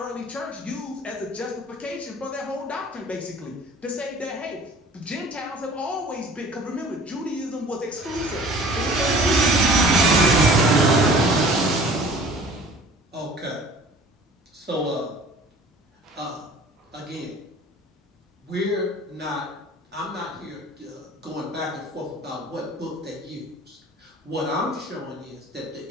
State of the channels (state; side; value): normal; both; correlation 0.47